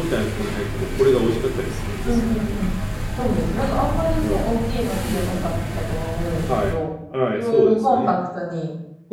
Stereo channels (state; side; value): identical; both; correlation 1.00